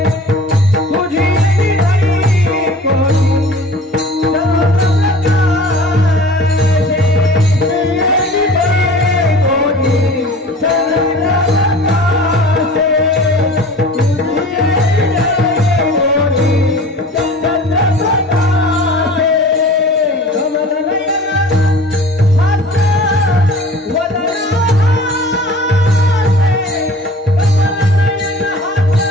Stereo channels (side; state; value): both; normal; correlation 0.43